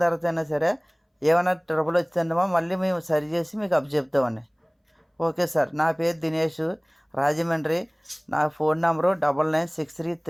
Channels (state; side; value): identical; both; correlation 1.00